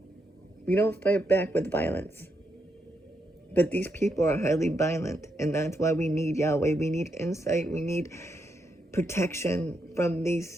We don't fight back with violence. But these people are highly violent, and that's why we need Yahweh. We need insight. We need protection from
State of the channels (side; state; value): both; normal; correlation 0.81